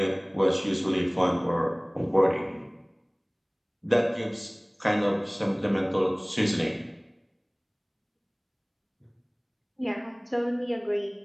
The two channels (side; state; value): both; identical; correlation 1.00